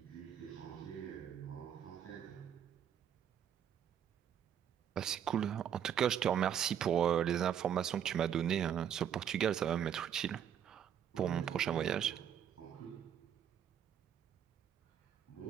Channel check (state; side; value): quieter; left; 9.2 dB